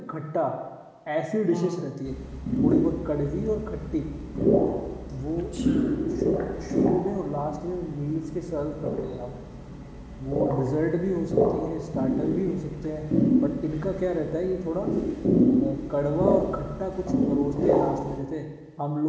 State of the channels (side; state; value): both; identical; correlation 1.00